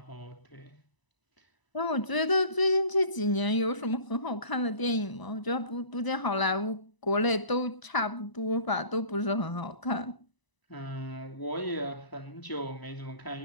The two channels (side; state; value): right; late; 1.0 ms